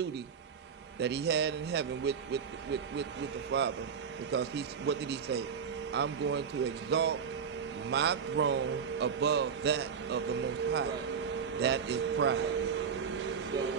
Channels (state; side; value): quieter; left; 6.7 dB